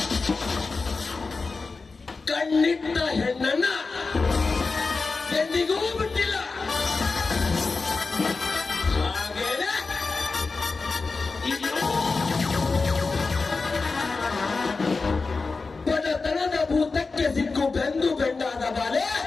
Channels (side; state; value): right; quieter; 4.1 dB